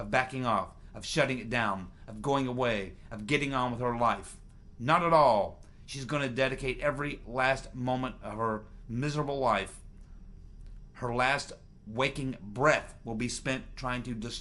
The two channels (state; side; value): identical; both; correlation 1.00